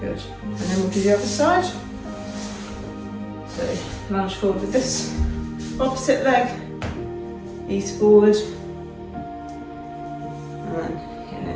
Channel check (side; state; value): both; identical; correlation 1.00